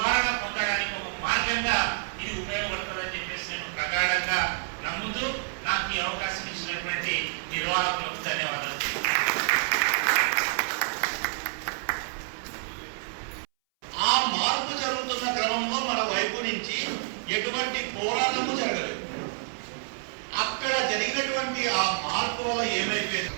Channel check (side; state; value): left; silent; 59 dB below the other